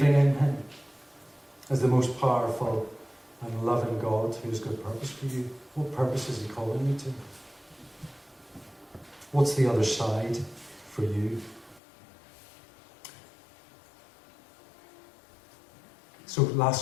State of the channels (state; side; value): drops out; right; at 11.8 s